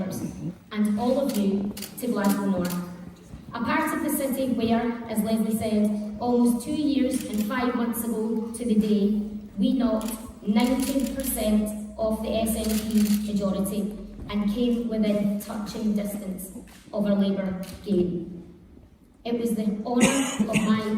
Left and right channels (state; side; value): identical; both; correlation 1.00